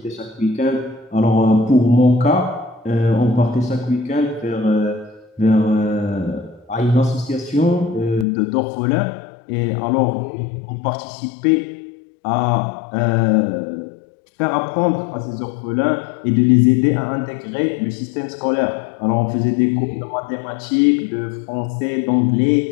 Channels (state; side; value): drops out; right; at 8.2 s